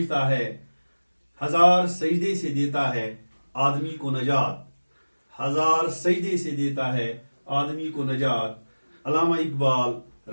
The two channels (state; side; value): inverted; both; correlation -1.00